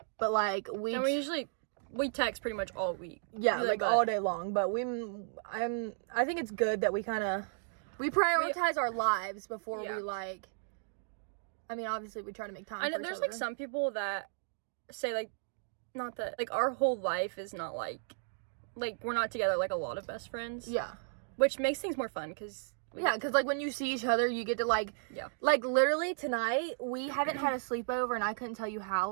But like, And we text pretty much all week. yeah, Really, like but- all day long. But I think it's good that we prioritize our lives before Yeah. we like. I mean, obviously, we try to make time. I know for each there's other. like some people that say like, not that, like our whole life is not like we're not together like a lot of best friends. Yeah, Which makes things more fun because because like when you see each other, you get to like. Yeah. Like literally tonight, we haven't had a sleepover, and I couldn't tell you how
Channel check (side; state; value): left; silent; digital silence